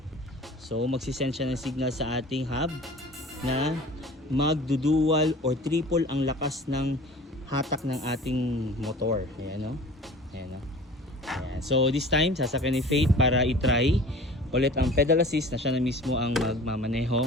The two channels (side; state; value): both; normal; correlation 0.43